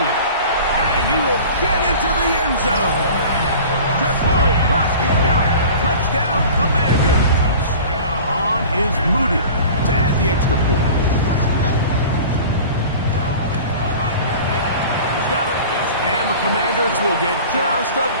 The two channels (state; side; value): inverted; both; correlation -0.40